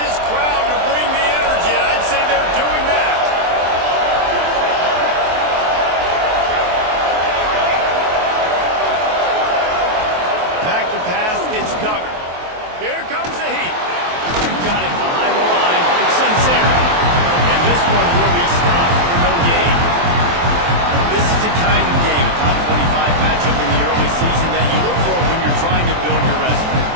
this crowd to bring the energy, and I'd say they're doing that. Back to pass, it's Duggar. Here comes the heat. Got it behind the line. It's Sincere. And this one will be stopped for no gain. This is the kind of game, a top 25 matchup in the early season, that you look for when you're trying to build your resume.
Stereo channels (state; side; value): late; left; 23 ms